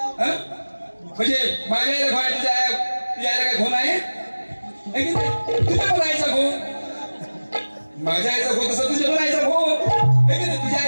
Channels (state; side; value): inverted; both; correlation -1.00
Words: म्हणजे माझ्या आईला भाऊ आहे, तुझ्या आईला काय भाऊ नाही, तुझ्या पण आईचा भाऊ, माझ्या आईचा भाऊ तसं तुझ्या पण आईचा भाऊ, आहे की नाही, तुझ्या